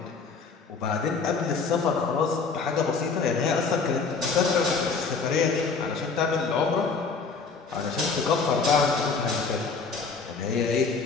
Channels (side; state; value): right; quieter; 4.8 dB